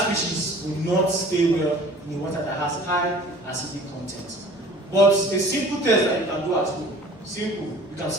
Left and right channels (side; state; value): both; normal; correlation 0.47